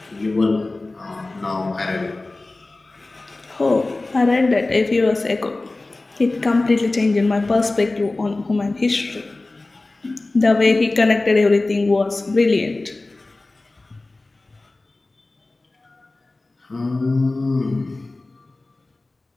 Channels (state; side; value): quieter; right; 3.1 dB